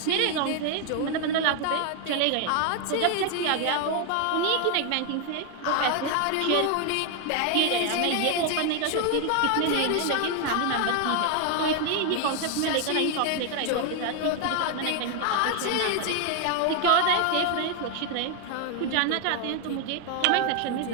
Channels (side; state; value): both; different; correlation 0.01